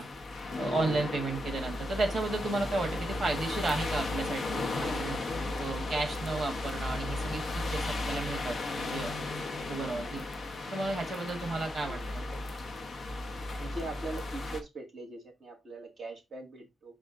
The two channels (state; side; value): normal; both; correlation 0.84